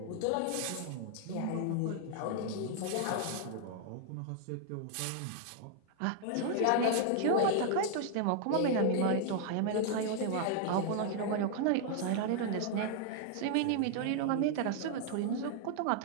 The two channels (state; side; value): different; both; correlation 0.00